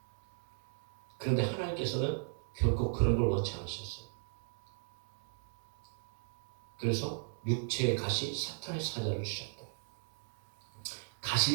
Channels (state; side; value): silent; left; digital silence